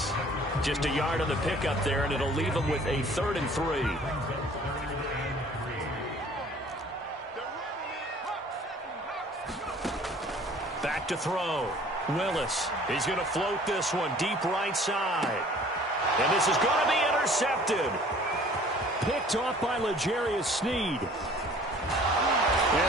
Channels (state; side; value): normal; both; correlation 0.52